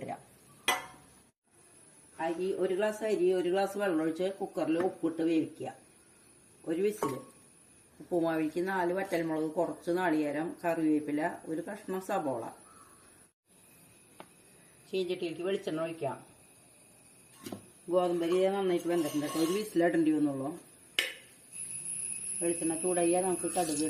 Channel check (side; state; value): both; identical; correlation 1.00